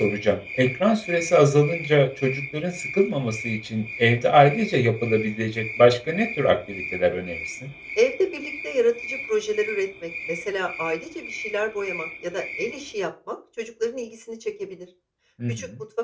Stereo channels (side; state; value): both; identical; correlation 1.00